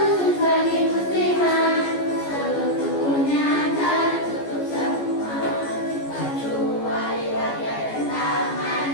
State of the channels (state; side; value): late; right; 14 ms